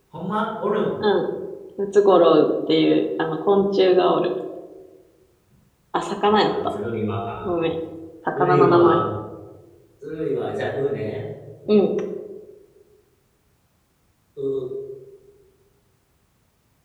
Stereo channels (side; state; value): both; identical; correlation 1.00